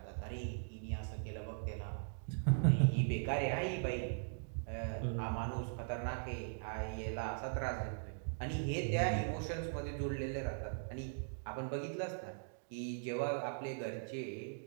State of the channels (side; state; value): left; silent; digital silence